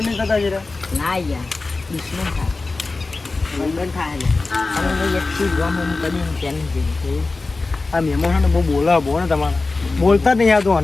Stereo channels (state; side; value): quieter; right; 3.6 dB